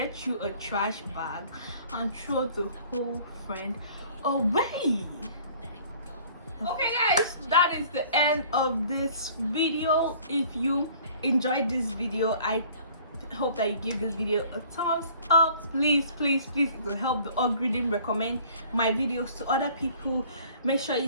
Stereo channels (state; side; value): inverted; both; correlation -0.52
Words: you a trash bag and throw the whole friend away. Okay guys, that is the end of this video. If you enjoyed this video, I hope that you give this video a thumbs up. Please, it will help the algorithm recommend my videos to other people. Make sure you